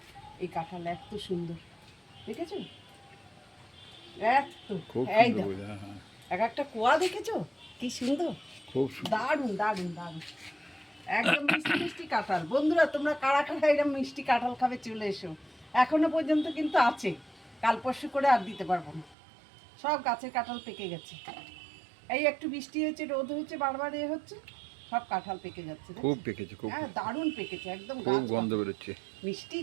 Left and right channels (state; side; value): drops out; left; at 19.2 s